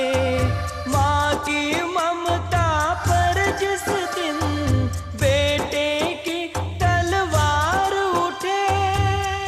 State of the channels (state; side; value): identical; both; correlation 1.00